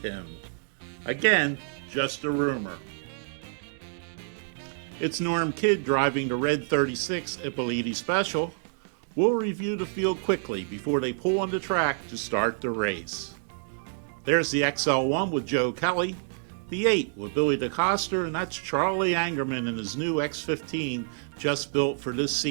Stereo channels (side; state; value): left; silent; digital silence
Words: him. Again, just a rumor. It's Norm Kidd driving the red 36 Ippoliti Special. We'll review the field quickly before they pull on the track to start the race. There's the XL1 with Joe Kelly, the 8 with Billy DeCoster, and that's Charlie Angerman in his new X15 just built for this